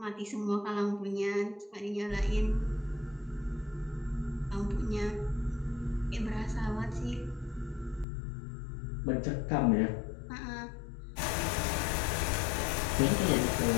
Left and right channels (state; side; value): drops out; right; at 8.1 s